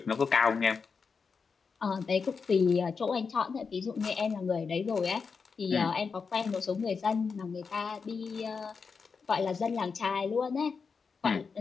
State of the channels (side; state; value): right; quieter; 5.3 dB